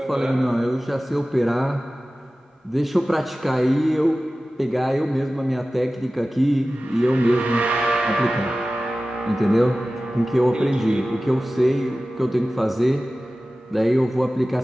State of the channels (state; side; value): normal; both; correlation 0.96